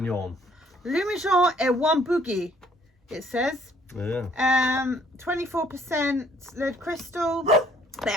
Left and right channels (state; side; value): normal; both; correlation 0.61